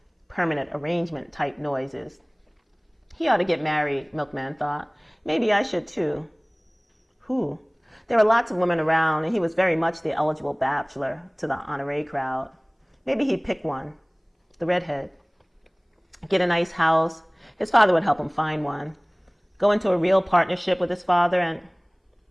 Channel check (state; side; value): identical; both; correlation 1.00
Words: permanent arrangement type noises. He ought to get married, Milkman thought. Maybe I should too. Who? There were lots of women around, and he was very much the eligible bachelor to the honoree crowd. Maybe he'd pick one, the redhead. Get a nice house. His father would help him find one. Go into a real partnership with his father